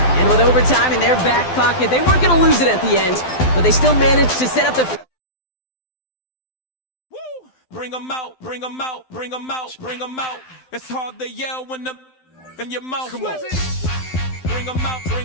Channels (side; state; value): right; late; 12 ms